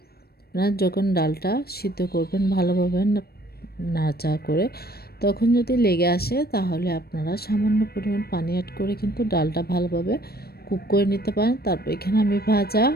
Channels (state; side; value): late; right; 0.46 ms